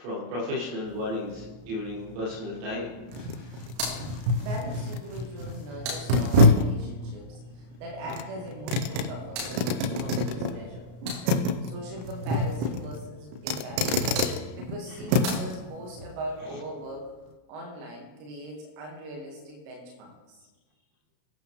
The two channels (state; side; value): late; left; 33 ms